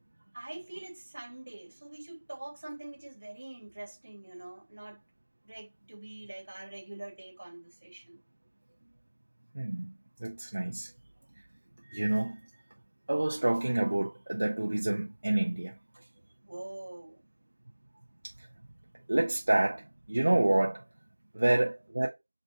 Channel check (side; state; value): both; inverted; correlation -1.00